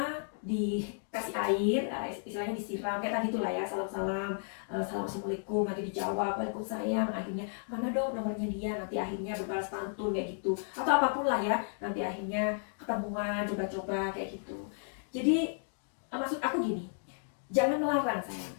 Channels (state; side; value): silent; right; digital silence